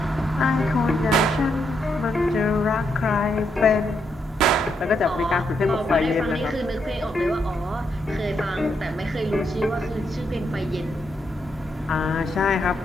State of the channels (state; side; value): normal; both; correlation 0.79